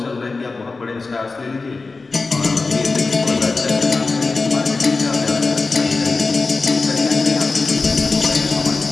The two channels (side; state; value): right; quieter; 3.9 dB